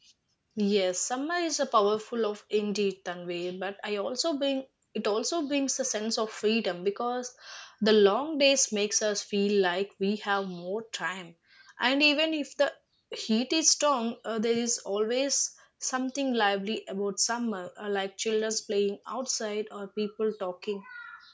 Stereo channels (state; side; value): identical; both; correlation 1.00